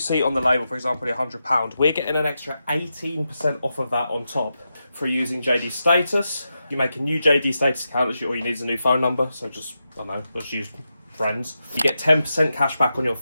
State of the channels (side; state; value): both; inverted; correlation -0.88